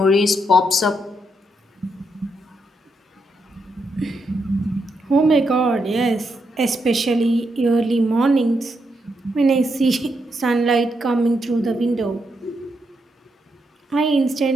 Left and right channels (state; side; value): normal; both; correlation 0.81